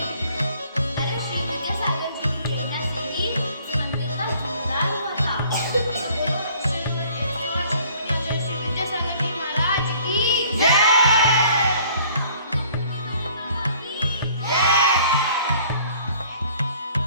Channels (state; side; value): inverted; both; correlation -0.55